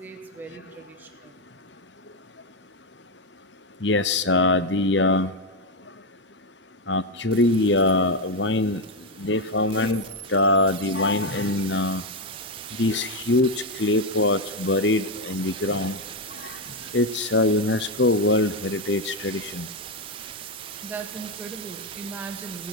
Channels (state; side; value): normal; both; correlation 0.07